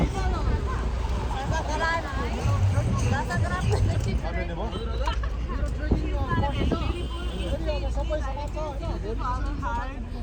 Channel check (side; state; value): both; identical; correlation 1.00